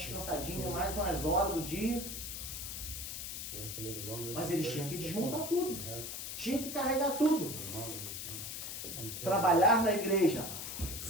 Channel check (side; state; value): left; noise; hiss, 6 dB below the sound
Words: mais umas horas do dia. Mas eles tinham que desmontar tudo. Tinha que carregar tudo. Trabalhar na igreja,